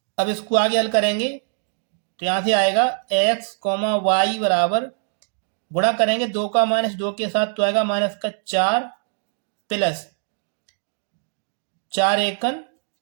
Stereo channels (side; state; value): left; silent; digital silence